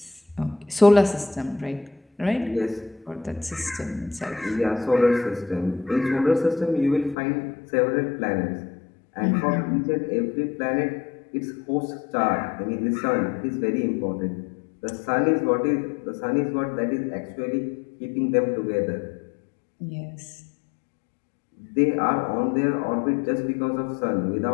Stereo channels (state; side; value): drops out; right; at 7.2 s